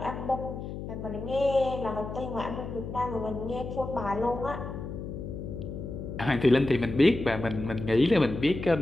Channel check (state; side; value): noise; left; hum, 8 dB below the sound